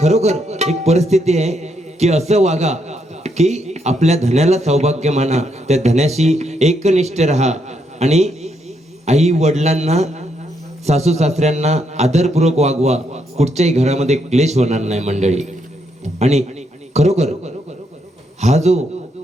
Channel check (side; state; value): both; normal; correlation 0.77